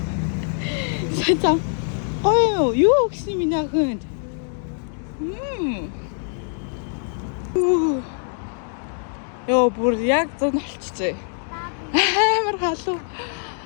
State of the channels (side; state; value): right; silent; 57 dB below the other